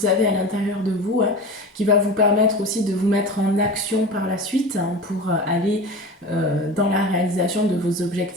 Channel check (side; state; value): both; normal; correlation 0.31